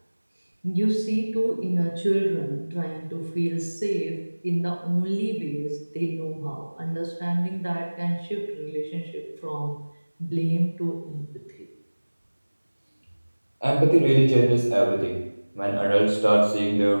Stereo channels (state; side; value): inverted; both; correlation -1.00